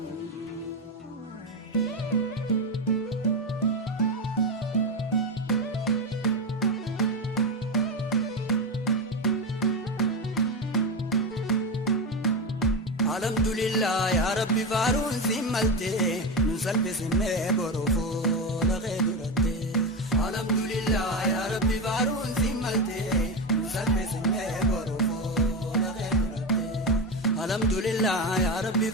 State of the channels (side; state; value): both; normal; correlation 0.15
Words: الحمد لله يا ربي فارون سملتي نسلب سمي بروفو لغيرتي. الحمد لله يا ربي فارون سملتي نسلب سمي بروفو لغيرتي. الحمد لله يا ربي